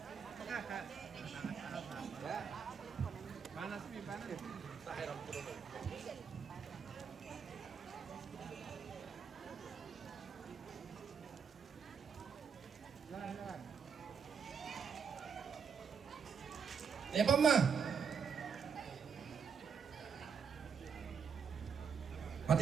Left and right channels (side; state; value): left; quieter; 6.5 dB